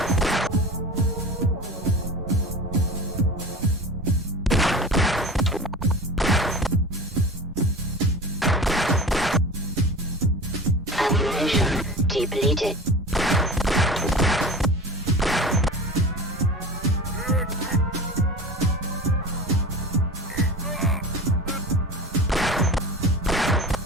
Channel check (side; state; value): both; normal; correlation 0.34